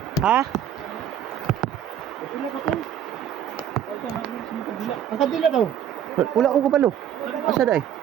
Ha? Ang kadila daw. Wala ko kabalo. Asa day?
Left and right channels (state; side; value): quieter; left; 9.7 dB